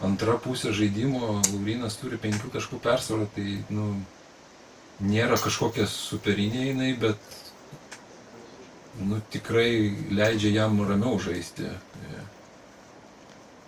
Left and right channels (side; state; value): both; identical; correlation 1.00